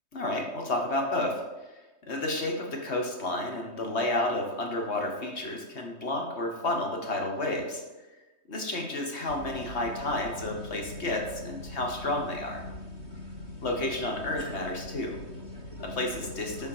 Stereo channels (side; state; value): right; late; 3.2 ms